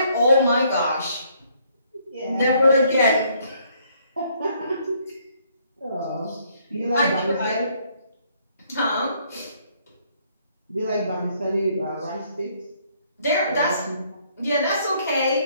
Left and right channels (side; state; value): both; inverted; correlation -0.67